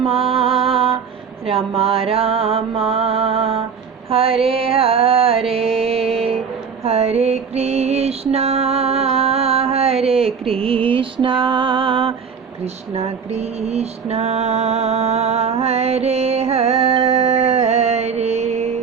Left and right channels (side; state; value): left; quieter; 6.3 dB